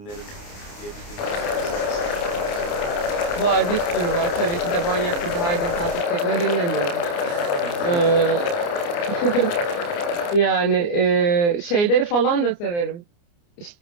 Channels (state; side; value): late; right; 29 ms